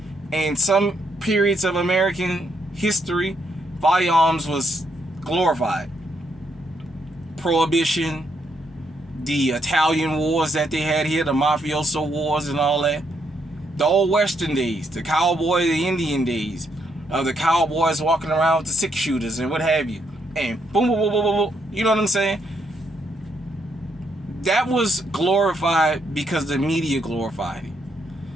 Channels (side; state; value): both; normal; correlation 0.75